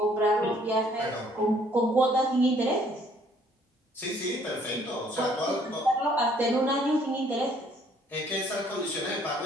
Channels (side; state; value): both; normal; correlation 0.62